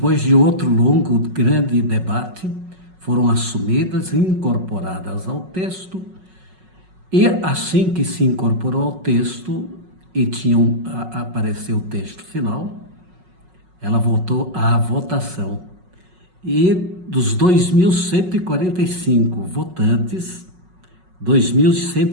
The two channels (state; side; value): late; left; 5.4 ms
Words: de outro longo, grande debate, foram assumidas e incorporadas ao texto, e assim que se incorporou ao texto e apareceu o texto final, ela voltou à votação. E dos 2.145 votantes,